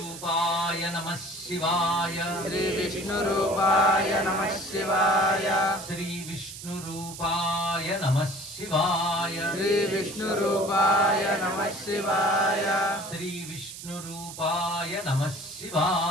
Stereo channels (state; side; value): noise; right; hiss, 12 dB below the sound